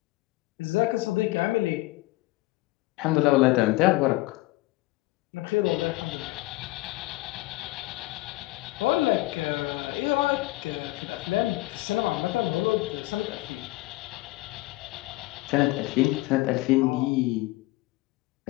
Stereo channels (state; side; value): quieter; right; 19.9 dB